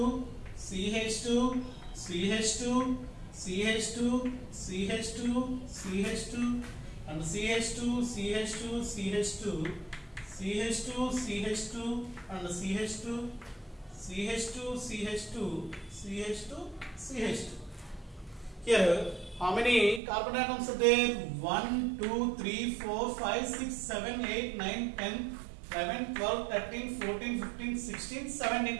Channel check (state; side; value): drops out; left; at 20.0 s